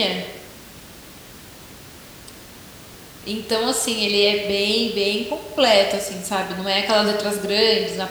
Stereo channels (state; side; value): identical; both; correlation 1.00